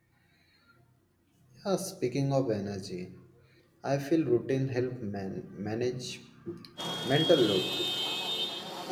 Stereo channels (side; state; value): both; identical; correlation 1.00